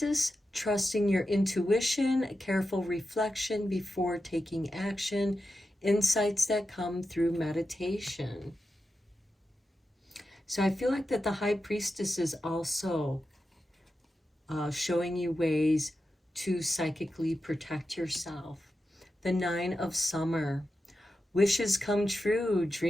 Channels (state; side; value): normal; both; correlation 0.90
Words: Trusting your intuition, careful reflection before taking action insights that come through meditation. So I feel like that the High Priestess is also showing you ways to psychically protect yourself. The Nine of Summer, wishes come true,